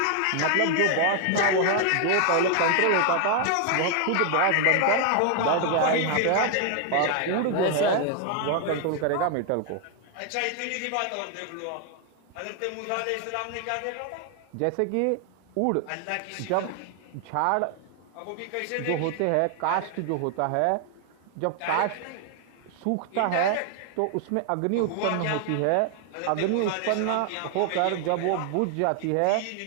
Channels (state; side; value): different; both; correlation 0.00